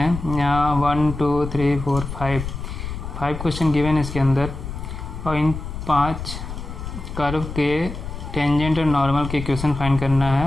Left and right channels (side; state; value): left; noise; rumble, 8 dB below the sound